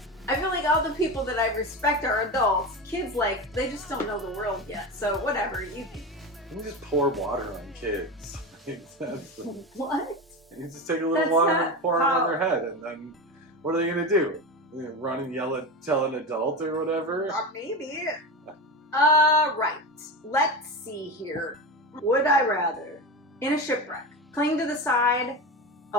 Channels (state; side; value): normal; both; correlation 0.22